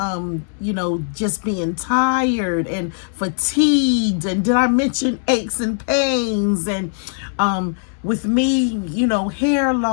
just being tired and fatigued. And did I mention aches and pains? And with me, hair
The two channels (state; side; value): silent; right; digital silence